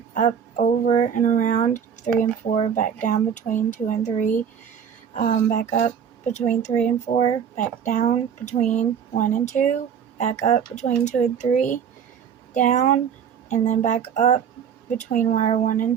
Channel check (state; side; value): quieter; left; 7.8 dB